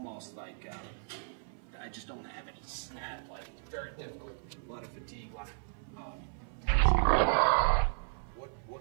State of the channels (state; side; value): silent; left; 55 dB below the other